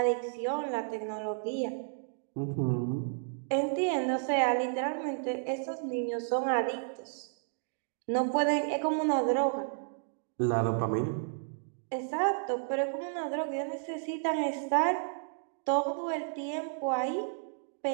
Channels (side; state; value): left; silent; digital silence